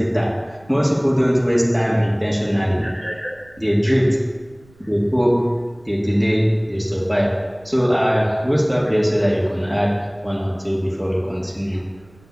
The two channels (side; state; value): right; noise; rumble, 28 dB below the sound